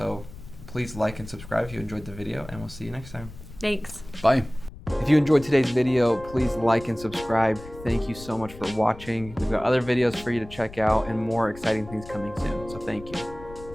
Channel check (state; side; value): noise; left; rumble, 16 dB below the sound